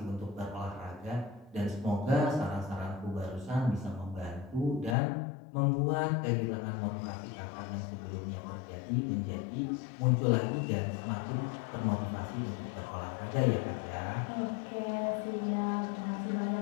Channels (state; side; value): drops out; right; at 5.0 s